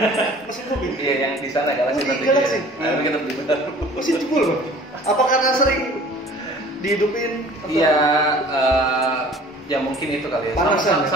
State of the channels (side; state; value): both; normal; correlation 0.48